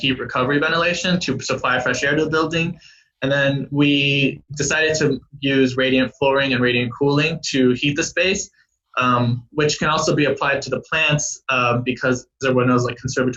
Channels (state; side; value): identical; both; correlation 1.00